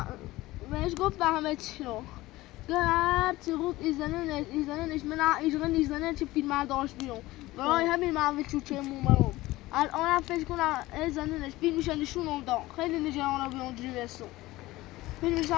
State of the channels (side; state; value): right; quieter; 18.3 dB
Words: گفت همه چی رو هر چی گفت ایزننش من ایزنن چه فیلم ها داشت بیرون برای همین من چوچه مومرم الان هم فکر کنم ایزننش فیلمش نشونم داد خیلی نجرانه به اونجوری برسون فیلمش